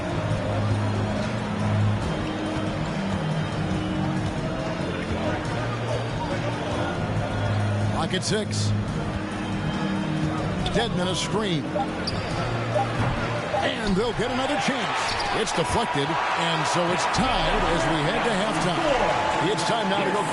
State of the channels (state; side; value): identical; both; correlation 1.00